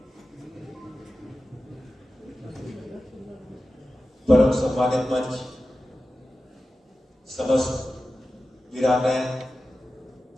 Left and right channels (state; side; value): normal; both; correlation 0.93